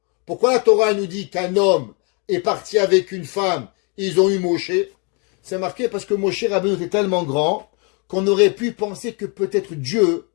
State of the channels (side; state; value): right; quieter; 34.0 dB